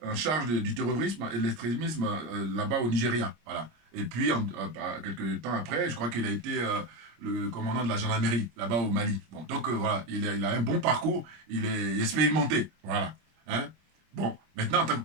en charge du terrorisme et de l'extrémisme là-bas au Nigeria, voilà. Et puis quelques temps après, je crois qu'il a été le commandant de la gendarmerie là-bas au Mali. Bon, donc voilà, il a un bon parcours, il est expérimenté, voilà. Hein? Bon, maintenant en tant que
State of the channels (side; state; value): left; late; 25 ms